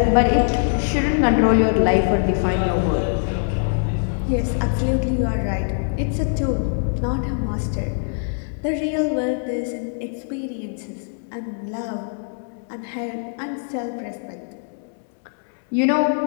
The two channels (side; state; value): right; silent; digital silence